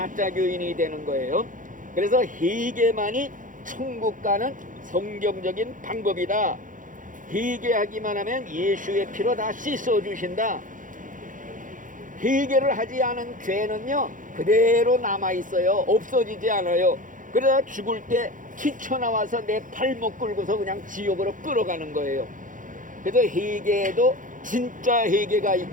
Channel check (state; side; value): late; left; 0.38 ms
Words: 교인이 되는 거예요. 그래서 회개만이 천국 가는 성경적인 방법이다. 회개하기만 하면 예수의 피로 다 씻어주신다. 회개를 하지 않은 죄는요 그대로 남아있어요. 없어지지 않아요. 그러다 죽을 때 튀쳐나와서 내 발목 끌고서 그냥 지옥으로 끌어가는 거예요. 그래서 회개에도 진짜 회개가